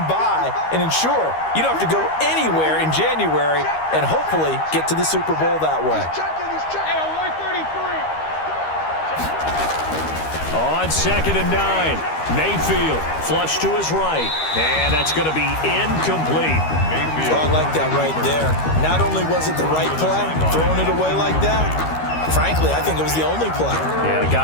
bye and ensure you don't have to go anywhere in January and hopefully get to the Super Bowl that way. On 2nd and 9, Mayfield flush to his right, and that's going to be incomplete. Mayfield. I like that right there. Not only was it the right play, throwing it away like that, frankly, I think it was the only play. Yeah,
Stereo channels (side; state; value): right; late; 13 ms